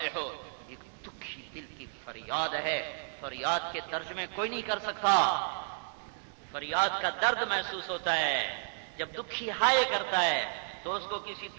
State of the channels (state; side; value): silent; left; digital silence